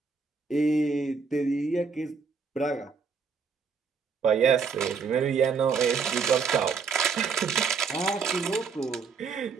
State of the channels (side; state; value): left; quieter; 5.4 dB